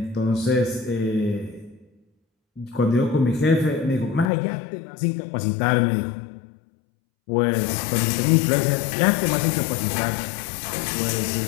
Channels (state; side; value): drops out; right; at 4.3 s